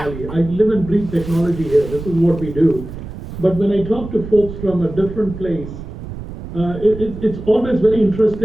I live and breathe technology here. This is what we do. But when I talk to folks from a different place, it's always very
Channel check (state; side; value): noise; right; rumble, 11 dB below the sound